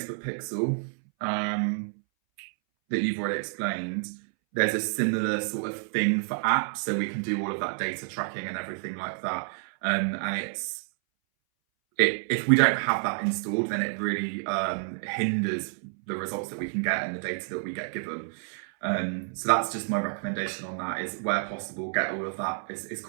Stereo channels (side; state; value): left; silent; 59 dB below the other